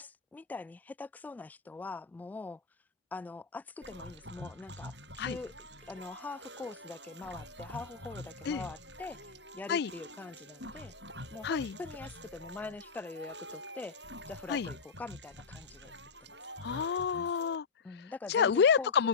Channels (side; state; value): right; quieter; 5.5 dB